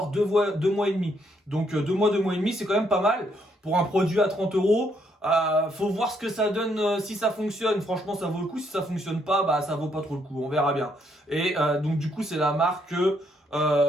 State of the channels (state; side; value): normal; both; correlation 0.72